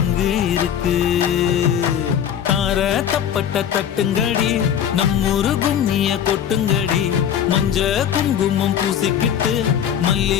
இங்கு இருக்கு தார தப்பட்ட தட்டுங்கடி நம்மூரு கும்மிய கொட்டுங்கடி மஞ்ச குங்குமம் பூசிக்கிட்டு மல்லி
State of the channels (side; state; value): right; quieter; 9.2 dB